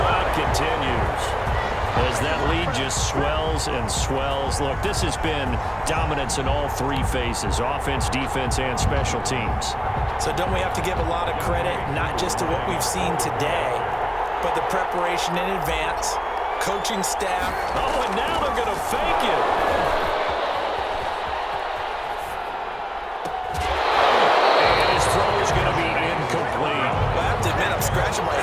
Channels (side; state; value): both; identical; correlation 1.00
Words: continues. As that lead just swells and swells. Look, this has been dominance in all 3 phases, offense, defense, and special teams. So don't we have to give a lot of credit, not just to what we've seen today, but the preparation in advance, coaching staff. Oh, and now they're going to fake it. And his throw is going to be incomplete. Well, I have to admit, I'm scratching my